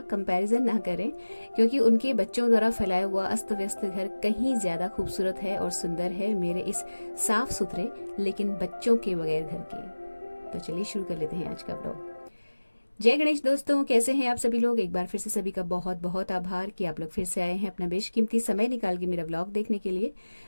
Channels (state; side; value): inverted; both; correlation -1.00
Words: कंपैरिजन ना करें, क्योंकि उनके बच्चों द्वारा फैलाया हुआ अस्त व्यस्त घर कहीं ज्यादा खूबसूरत है और सुंदर है मेरे इस साफ सुथरे लेकिन बच्चों के बगैर घर के। तो चलिए शुरू कर लेते हैं आज का व्लॉग। जय गणेश दोस्तों, कैसे हैं आप सभी लोग। एक बार फिर से सभी का बहुत बहुत आभार कि आप लोग फिर से आए हैं अपना बेशकीमती समय निकाल के मेरा व्लॉग देखने के लिए।